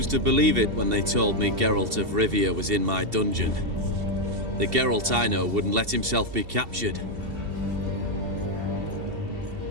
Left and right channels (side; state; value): left; late; 2.7 ms